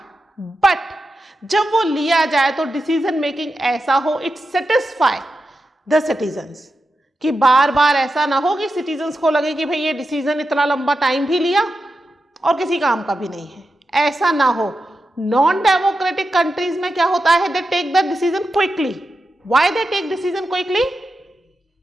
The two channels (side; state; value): both; normal; correlation 0.90